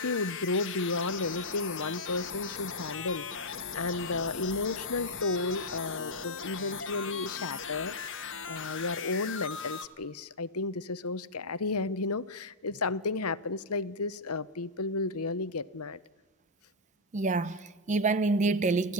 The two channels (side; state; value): both; normal; correlation -0.05